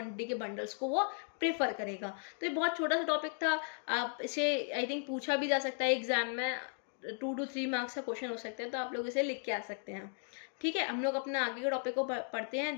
के बंडल्स को वो प्रेफर करेगा। तो ये बहुत छोटा सा टॉपिक था, आप इसे आई थिंक पूछा भी जा सकता है एग्जाम में, 2 to 3 मार्क्स का क्वेश्चन हो सकते हैं, तो आप लोग इसे लिख के आ सकते हैं। ठीक है, हम लोग अपना आगे के टॉपिक को पढ़ते हैं,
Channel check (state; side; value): silent; right; 54 dB below the other